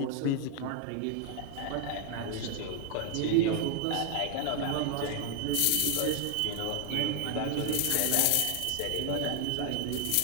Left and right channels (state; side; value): different; both; correlation 0.00